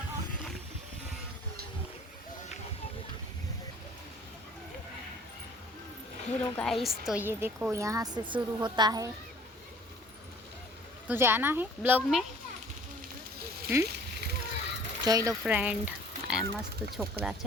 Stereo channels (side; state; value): both; normal; correlation 0.52